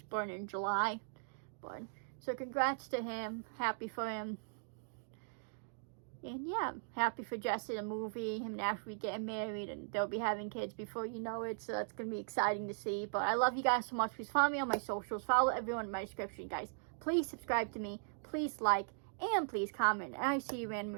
born in July. But so congrats to him. Happy for him. And yeah, happy for Jesse, the movie, him and Ashley getting married, and they'll be having kids before you know it, so that's going to be exciting to see. But I love you guys so much. Please follow me on my socials. Follow everyone in my description, guys. Please subscribe to me. Please like, and please comment. And I see you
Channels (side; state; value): left; silent; digital silence